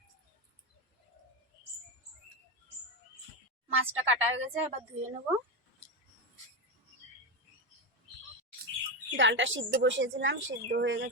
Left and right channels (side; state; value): both; normal; correlation 0.13